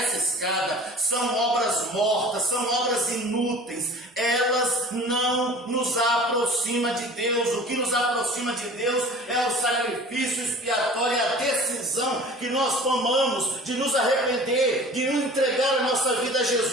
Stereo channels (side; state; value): both; normal; correlation 0.43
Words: são obras mortas, são obras inúteis. Elas não nos aproximam de Deus. O que nos aproxima de Deus é o sacrifício expiatório, a decisão que nós tomamos de nos arrepender, de entregar a nossa vida a